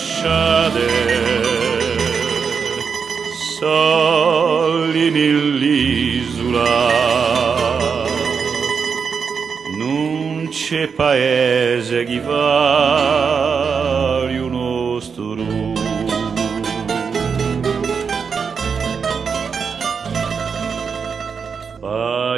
soli nell'isola, non c'è paese che vale un nostro.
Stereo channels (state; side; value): quieter; left; 6.0 dB